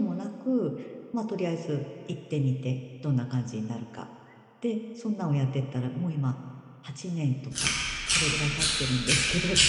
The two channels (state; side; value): identical; both; correlation 1.00